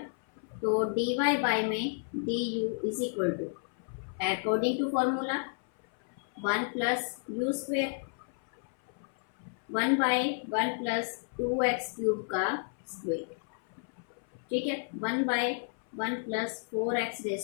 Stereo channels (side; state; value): right; silent; 57 dB below the other